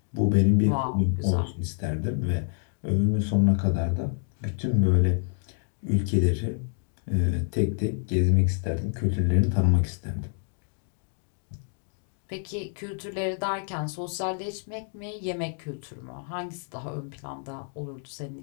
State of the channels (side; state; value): right; silent; 60 dB below the other